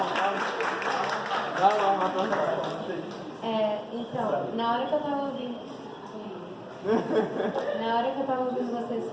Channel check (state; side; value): identical; both; correlation 1.00